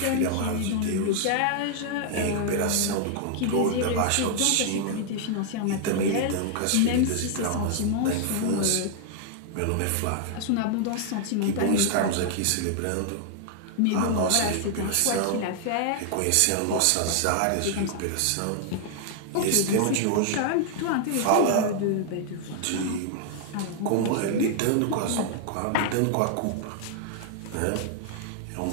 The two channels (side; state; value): both; different; correlation -0.01